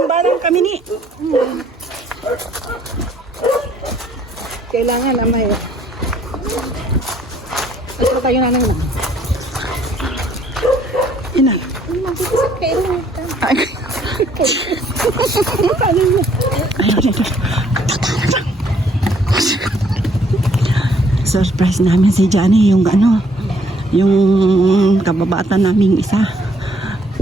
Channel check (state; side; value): normal; both; correlation 0.64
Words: kami ni. Kailangan na may. Ano tayo na nang. Ina. Ay. Surprise namin si Johnny, yung ano, yung kababata naming isa.